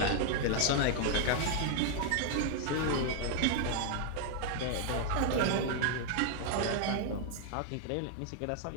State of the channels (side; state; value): both; different; correlation 0.00